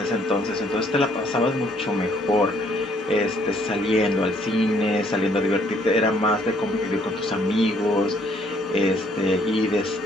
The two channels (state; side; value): normal; both; correlation 0.65